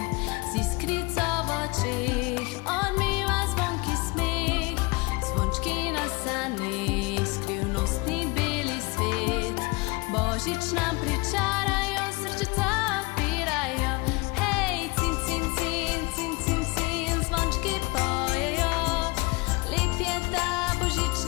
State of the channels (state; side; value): quieter; right; 26.0 dB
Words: iskrico v očeh, on miva zvonki smeh, zvončki na saneh, skrivnostni beli svet. Božič nam pričarajo, srčica odpirajo, hej, cin, cin, cin, cin, cin, cin, zvončki pojejo. Lep je ta